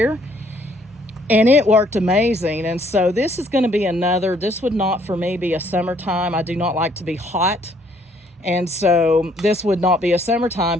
and it worked amazing. And so this is going to be another, this would not for me be a summertime. I do not like to be hot. And so this would not be a summertime,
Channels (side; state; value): both; normal; correlation 0.64